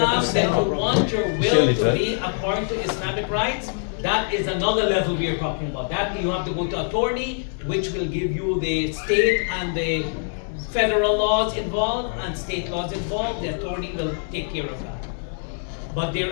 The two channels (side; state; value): right; silent; 59 dB below the other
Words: that you want your will to be according to Islamic rights, that is another level we are talking about. That you have to go to attorney, which will give you the state and the federal laws involved and state laws involved. The attorney will take care of that. But there